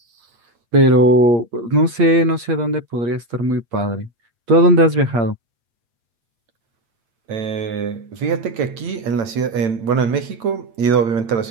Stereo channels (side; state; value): left; late; 8.6 ms